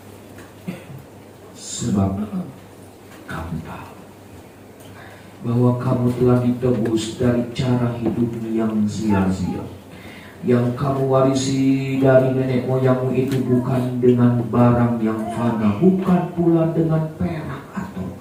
Sebab kamu tahu bahwa kamu telah ditebus dari cara hidup yang sia-sia yang kamu warisi dari nenek moyangmu itu, bukan dengan barang yang fana, bukan pula dengan perak atau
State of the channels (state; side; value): identical; both; correlation 1.00